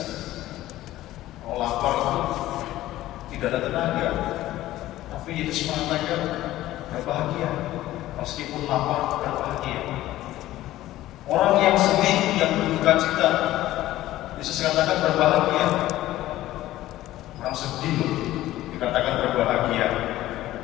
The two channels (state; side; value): quieter; right; 15.2 dB